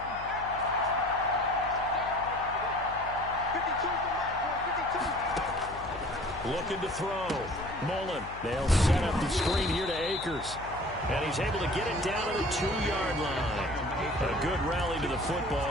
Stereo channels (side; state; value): left; noise; hum, 15 dB below the sound